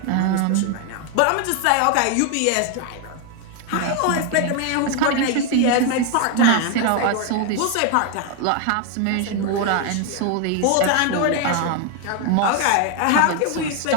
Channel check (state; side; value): different; both; correlation 0.01